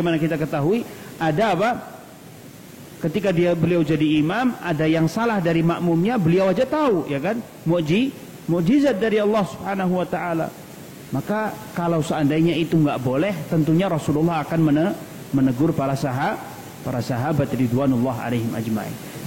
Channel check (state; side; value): identical; both; correlation 1.00